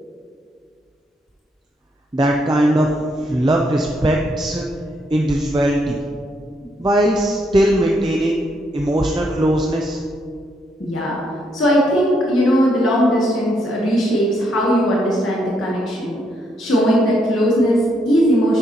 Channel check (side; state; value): both; normal; correlation 0.75